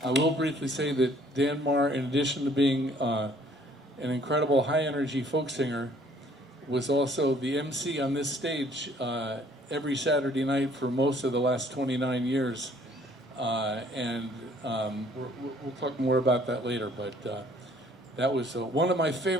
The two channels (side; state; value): both; normal; correlation 0.59